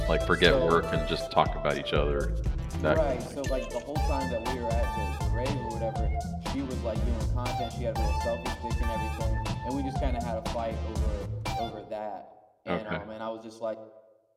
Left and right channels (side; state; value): both; identical; correlation 1.00